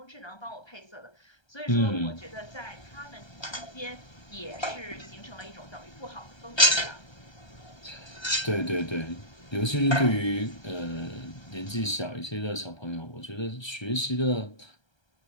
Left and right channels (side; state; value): right; late; 1.3 ms